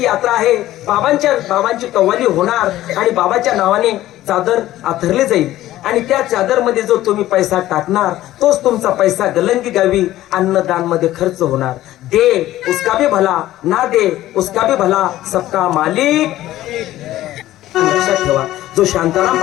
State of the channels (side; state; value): right; quieter; 14.7 dB